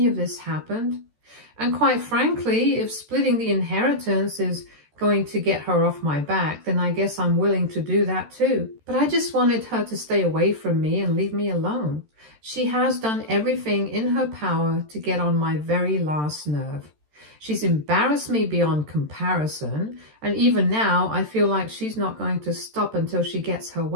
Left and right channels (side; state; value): left; late; 13 ms